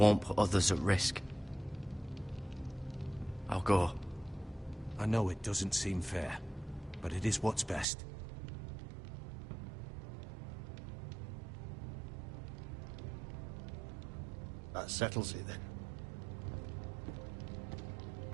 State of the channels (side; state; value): left; drops out; at 7.9 s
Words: put others at risk. I'll go. I know it doesn't seem fair, but it is what's best. That settles it then.